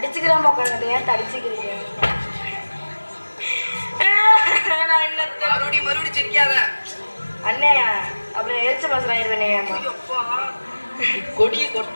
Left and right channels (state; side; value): inverted; both; correlation -1.00